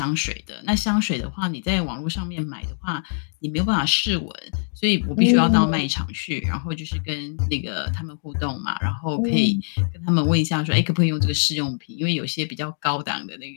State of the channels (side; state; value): right; silent; digital silence